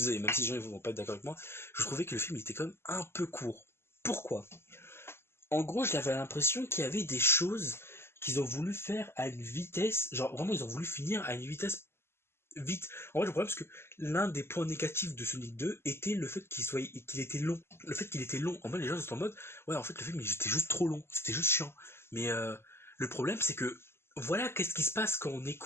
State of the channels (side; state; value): right; late; 0.12 ms